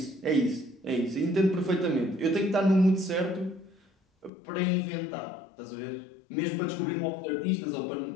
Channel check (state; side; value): drops out; right; at 4.3 s